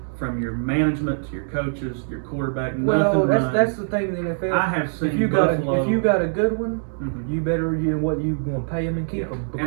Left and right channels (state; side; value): silent; left; digital silence